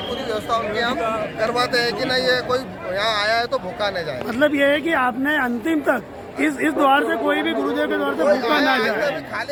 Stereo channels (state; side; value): identical; both; correlation 1.00